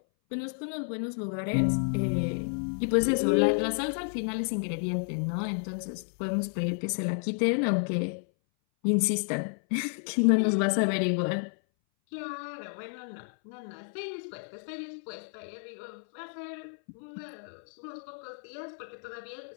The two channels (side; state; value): right; silent; 57 dB below the other